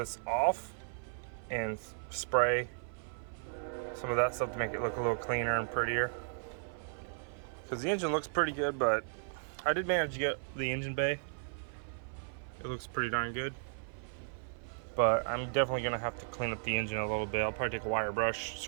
off and spray some of that stuff to make it look a little cleaner and prettier. Because the engine looks pretty good, but I did manage to get the engine bay. It looks pretty darn good. But I'm definitely gonna have to clean up the engine a little bit. I'll probably take a wire brush,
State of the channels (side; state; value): left; silent; 54 dB below the other